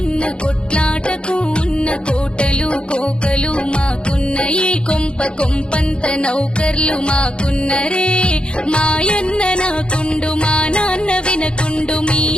కొట్లాటకు ఉన్న కోటలు కోకలు మాకున్న ఈ కొంప కొంపంత నౌకర్లు మాకున్నరే మాయన్న నాకుండు మా నాన్న వినకుండు మీ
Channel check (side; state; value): right; late; 0.054 ms